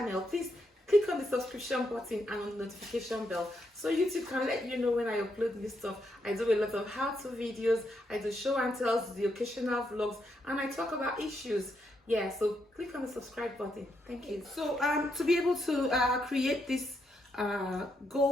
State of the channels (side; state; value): both; normal; correlation 0.79